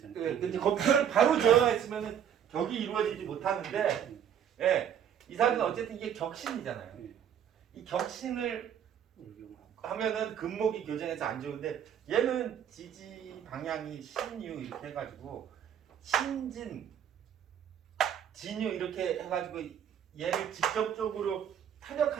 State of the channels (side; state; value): left; quieter; 8.9 dB